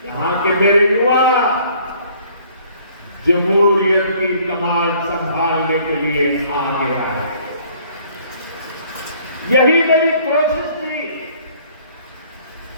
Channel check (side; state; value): both; inverted; correlation -0.58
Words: यहां के मेरे युवा जमहूरियत की कमान संभालने के लिए आगे आए। यही मेरी कोशिश थी।